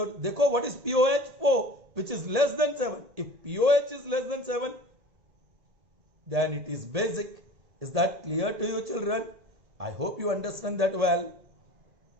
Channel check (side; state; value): left; late; 1.7 ms